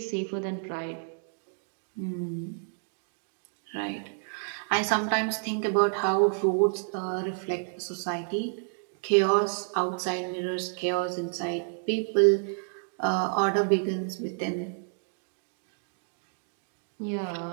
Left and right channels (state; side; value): silent; left; digital silence